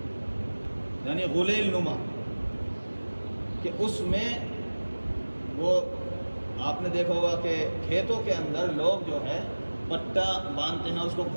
یعنی غلیل نما، کہ اس میں وہ آپ نے دیکھا ہوگا کہ کھیتوں کے اندر لوگ جو ہے پٹا باندھتے ہیں، اس کو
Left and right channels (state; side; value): inverted; both; correlation -1.00